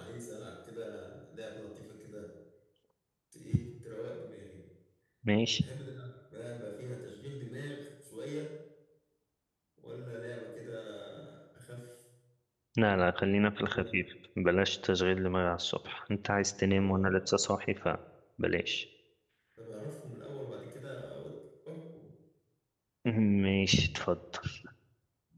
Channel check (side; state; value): both; identical; correlation 1.00